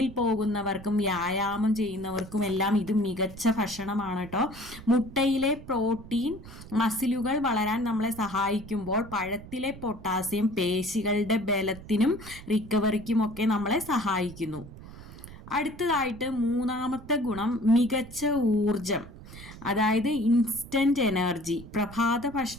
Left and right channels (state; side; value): noise; right; rumble, 16 dB below the sound